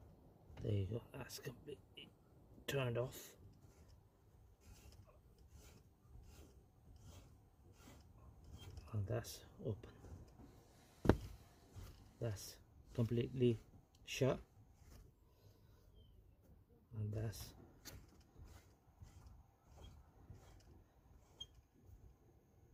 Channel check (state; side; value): identical; both; correlation 1.00